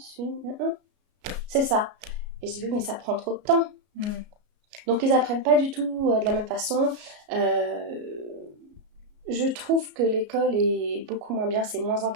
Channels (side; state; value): left; late; 33 ms